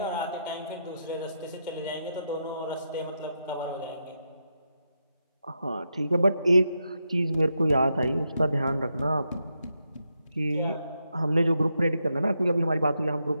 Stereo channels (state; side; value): inverted; both; correlation -0.83